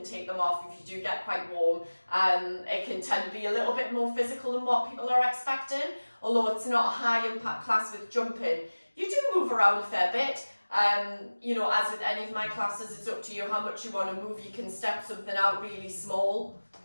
take them off if you do get quite warm. It can tend to be a little bit more physical than what people are expecting, although it's not a high impact class with jumping. You do move around a fair bit. You know, as with any of my classes, it's up to you how much you want to move. You can step something out really small,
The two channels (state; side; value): inverted; both; correlation -1.00